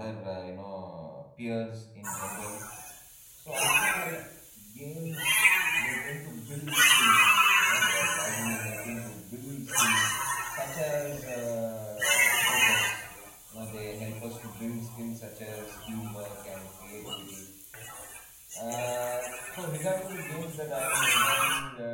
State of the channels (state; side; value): identical; both; correlation 1.00